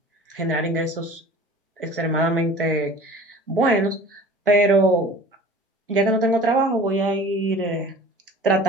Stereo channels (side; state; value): both; normal; correlation 0.44